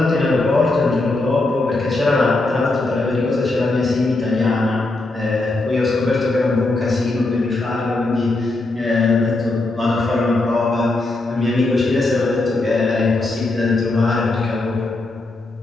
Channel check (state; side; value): quieter; right; 3.0 dB